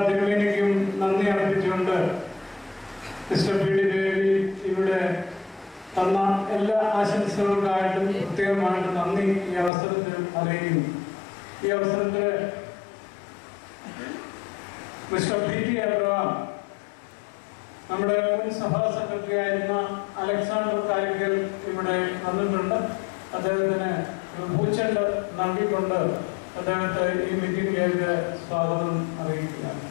തിരുമേനിക്കും നന്ദി അർപ്പിച്ചുകൊണ്ട് മിസ്റ്റർ PD ദേവി ഇവിടെ തന്ന എല്ലാ ആശംസകൾക്കായിട്ടും പ്രത്യേകമായിട്ട് നന്ദി ഈ അവസരത്തിൽ അറിയിക്കുന്നു. ഈ അവസരത്തിൽ മിസ്റ്റർ PT അബ്രഹാം, നമ്മുടെ മുൻ സഭാ സെക്രട്ടറി ആയിരുന്ന അലക്സാണ്ടർ കാരിക്കൽ ഇവിടെ വന്നിട്ടുണ്ട്. അദ്ദേഹത്തിന് പൂച്ചെണ്ട് നൽകിക്കൊണ്ട് അദ്ദേഹത്തെ ഈ മീറ്റിംഗിലേക്ക് സ്വാഗതം അറിയിക്കുകയാണ്.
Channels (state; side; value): drops out; right; at 9.7 s